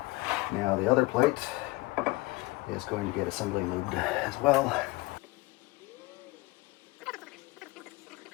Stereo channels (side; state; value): right; quieter; 22.0 dB